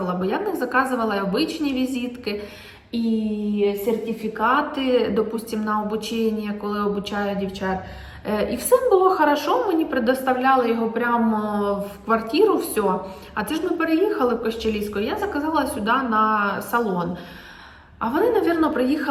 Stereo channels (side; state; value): both; identical; correlation 1.00